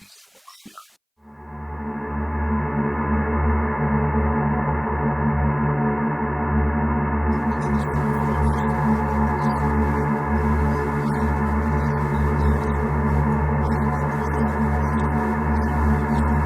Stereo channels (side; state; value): both; identical; correlation 1.00